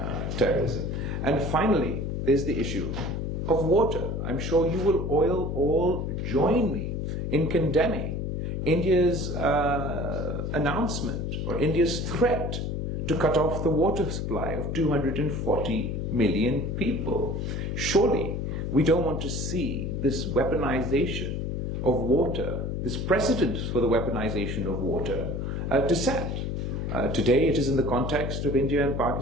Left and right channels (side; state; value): left; noise; hum, 2 dB below the sound